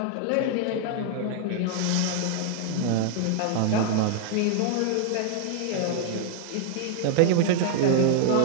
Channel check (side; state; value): both; different; correlation 0.00